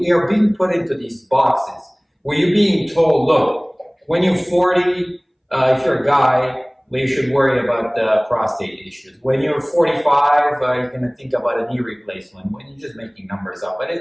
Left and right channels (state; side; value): identical; both; correlation 1.00